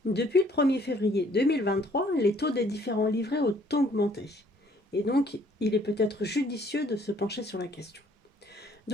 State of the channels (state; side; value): normal; both; correlation 0.61